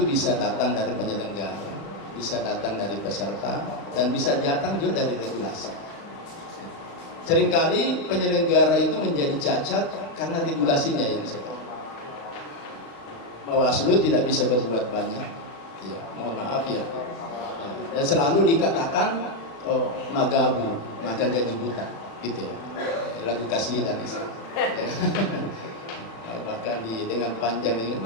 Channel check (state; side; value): late; right; 35 ms